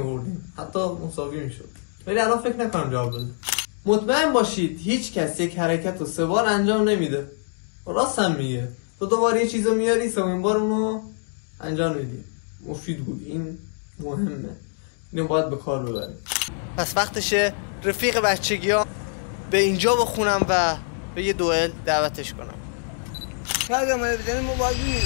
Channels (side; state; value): right; silent; 62 dB below the other